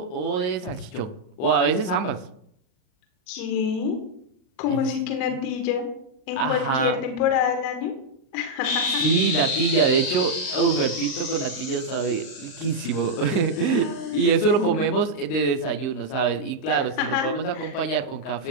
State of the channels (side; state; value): right; late; 38 ms